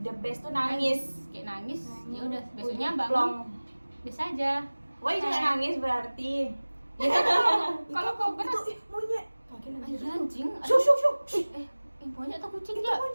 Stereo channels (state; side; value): inverted; both; correlation -1.00